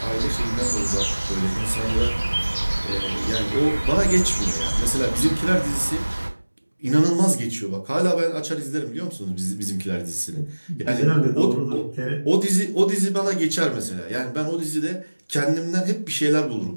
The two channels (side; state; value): both; inverted; correlation -1.00